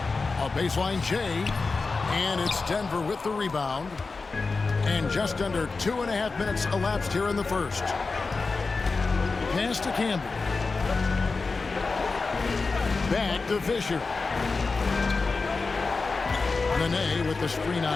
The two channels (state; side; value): quieter; right; 4.1 dB